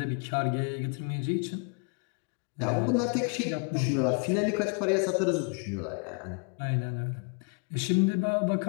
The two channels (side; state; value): right; quieter; 36.0 dB